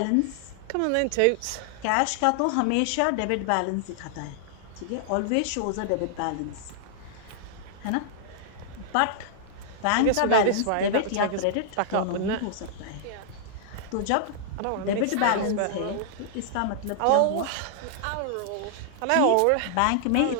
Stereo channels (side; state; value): both; different; correlation -0.01